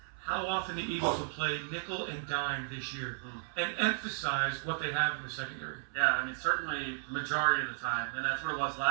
how often the Eagles will play nickel and dime this year and emphasize what they have in the secondary. Yeah, I mean, certainly the majority of the time. And that's what it was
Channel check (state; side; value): silent; left; 55 dB below the other